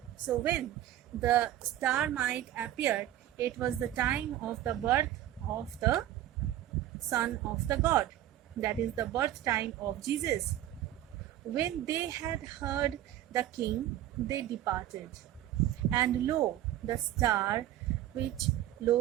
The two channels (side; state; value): left; quieter; 12.9 dB